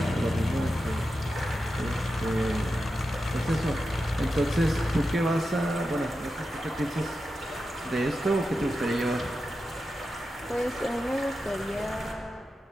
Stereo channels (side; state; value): both; normal; correlation 0.90